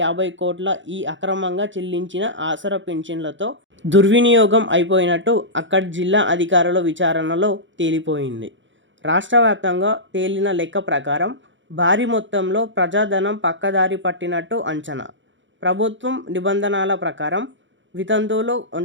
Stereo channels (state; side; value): late; left; 0.55 ms